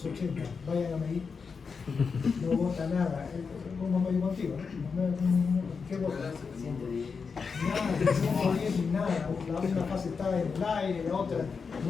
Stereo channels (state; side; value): quieter; right; 5.4 dB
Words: vayan a medir. No bota nada, como me digo contigo, ¿qué bota? Nada, no bien, nada, una fase está en el aire, la otra,